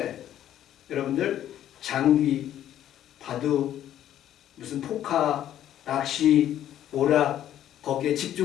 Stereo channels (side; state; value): right; quieter; 11.5 dB